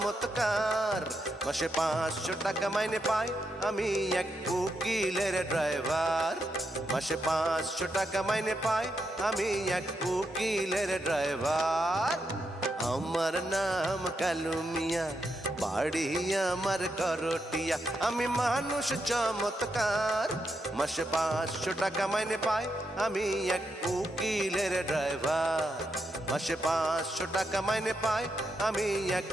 মাসে 500 টাকা মাইনে পাই, আমি এক উকিলের ড্রাইভার। মাসে 500 টাকা মাইনে পাই, আমি এক উকিলের ড্রাইভার। আমার নাম কালু মিয়া, বাড়ি আমার করটিয়া। আমি মানুষ চমৎকার, মাসে 500 টাকা মাইনে পাই, আমি এক উকিলের ড্রাইভার। মাসে 500 টাকা মাইনে পাই, আমি এক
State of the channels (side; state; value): both; normal; correlation 0.83